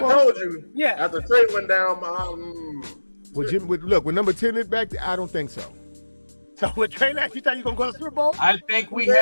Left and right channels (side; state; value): both; inverted; correlation -1.00